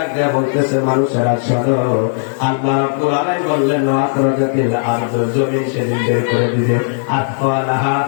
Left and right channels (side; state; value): right; silent; digital silence